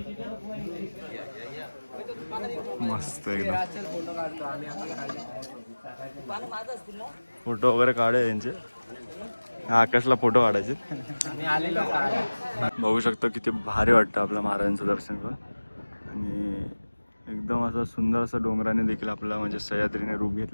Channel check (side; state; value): both; inverted; correlation -1.00